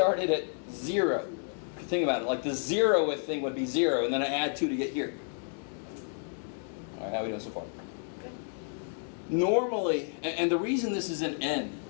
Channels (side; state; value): right; silent; 57 dB below the other